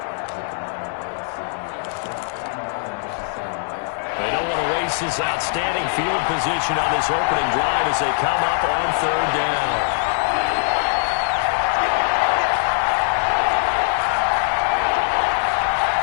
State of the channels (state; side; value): silent; right; 65 dB below the other